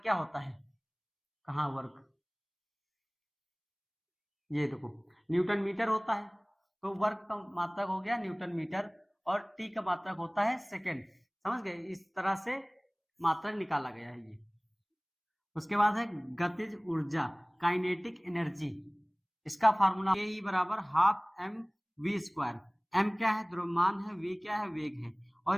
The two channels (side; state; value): both; identical; correlation 1.00